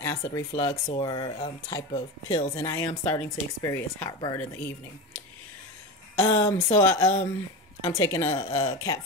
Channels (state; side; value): normal; both; correlation 0.23